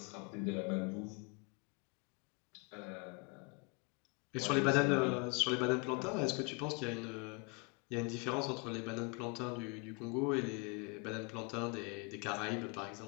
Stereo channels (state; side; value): quieter; right; 31.2 dB